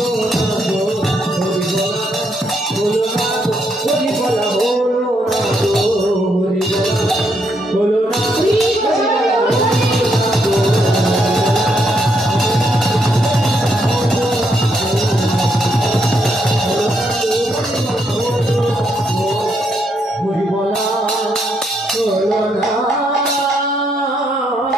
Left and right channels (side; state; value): both; normal; correlation 0.76